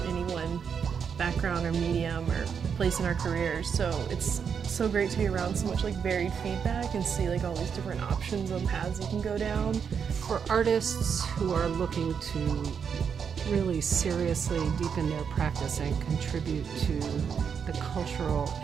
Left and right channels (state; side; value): quieter; left; 6.9 dB